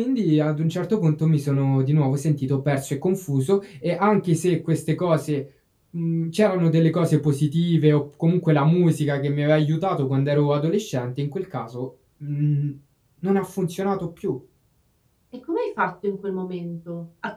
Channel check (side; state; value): both; identical; correlation 1.00